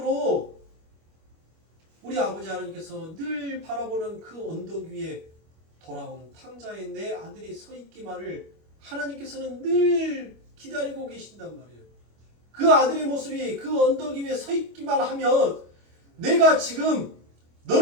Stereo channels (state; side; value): late; left; 25 ms